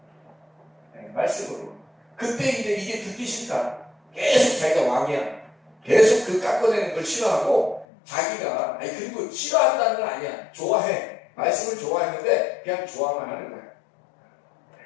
네, 말씀으로. 그때 이제 이게 듣기 싫다. 계속 자기가 왕이야. 계속 그 깎아내는 걸 싫어하고, 자기가, 그리고 싫어한다는 건 아니야. 좋아해. 말씀을 좋아했는데, 그냥 좋아만 하는 거야.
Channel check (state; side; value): drops out; right; at 7.9 s